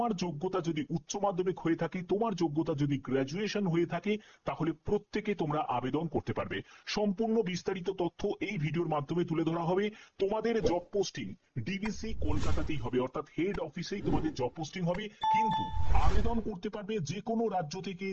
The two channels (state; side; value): identical; both; correlation 1.00